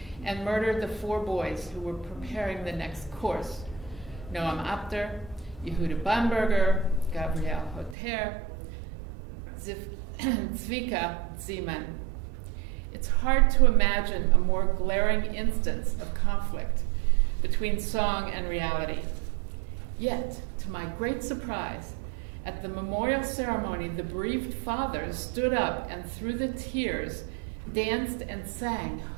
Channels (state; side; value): drops out; left; at 8.0 s